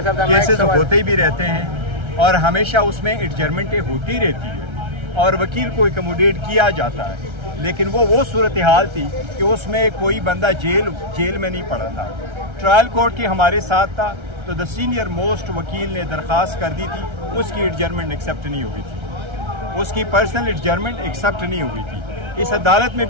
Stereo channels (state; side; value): late; left; 1.3 ms